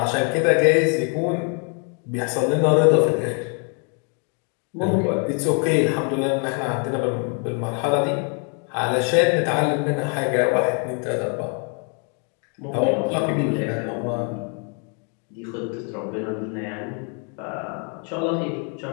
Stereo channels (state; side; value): quieter; right; 38.9 dB